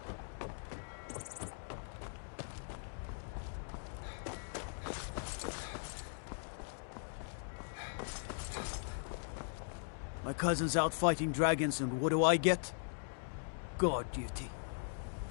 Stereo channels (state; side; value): silent; right; digital silence